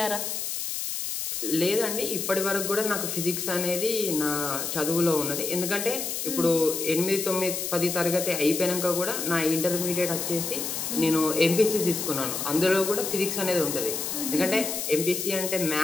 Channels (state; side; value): noise; left; hiss, 3 dB below the sound